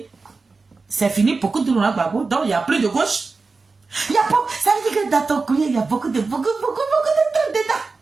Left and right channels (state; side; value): quieter; left; 4.1 dB